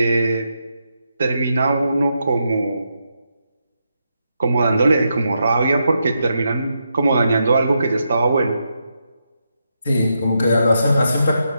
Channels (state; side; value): inverted; both; correlation -0.83